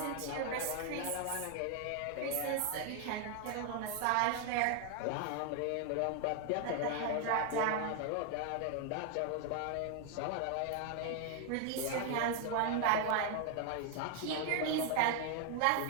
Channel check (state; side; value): different; both; correlation 0.00